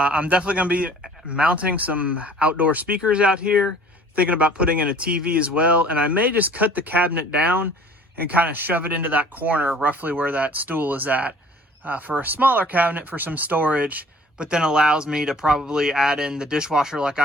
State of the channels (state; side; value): normal; both; correlation 0.51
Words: definitely going to be mounting some outdoor speakers out here, thinking about putting in a TV as well. And I may just cut the cabinet down and kind of shove it into that corner roughly where that stool is at. For a smaller cabinet for some storage, but then allows me to probably add in the dishwasher like